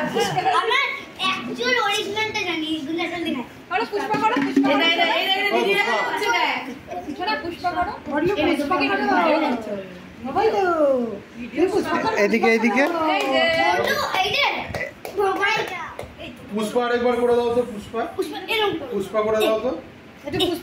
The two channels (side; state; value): both; identical; correlation 1.00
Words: পুষ্পা এদিকে এদিকে পুষ্পা আরেকবার করে দাও তো। পুষ্পা পুষ্পা করে দাও তো।